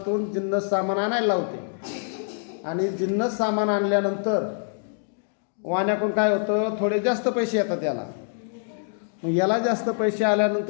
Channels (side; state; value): right; silent; digital silence